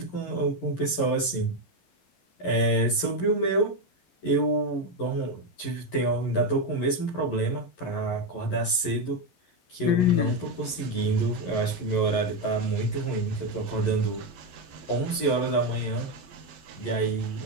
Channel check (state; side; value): late; right; 11 ms